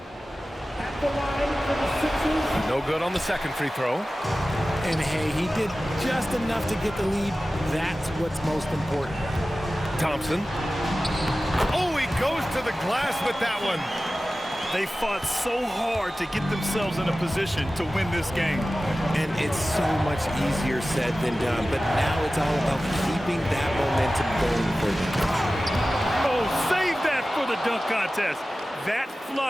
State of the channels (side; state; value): both; normal; correlation 0.96